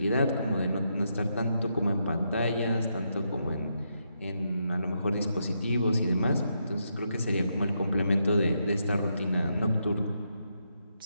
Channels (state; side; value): inverted; both; correlation -0.81